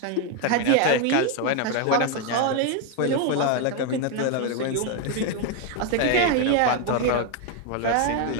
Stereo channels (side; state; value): both; different; correlation 0.01